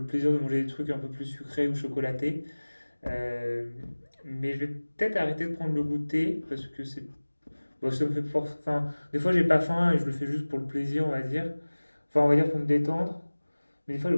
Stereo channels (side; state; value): both; inverted; correlation -1.00